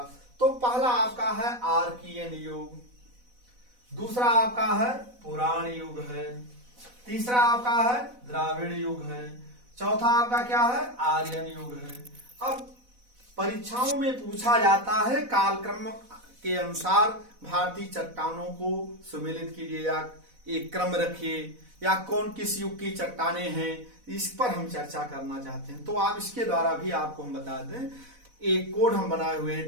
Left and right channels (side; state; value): left; late; 4.0 ms